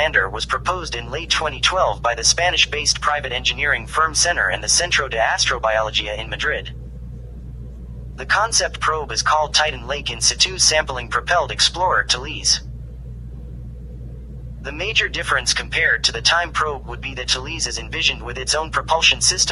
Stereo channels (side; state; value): both; identical; correlation 1.00